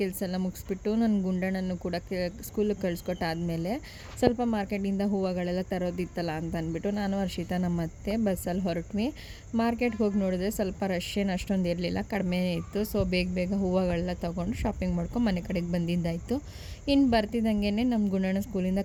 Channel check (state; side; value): identical; both; correlation 1.00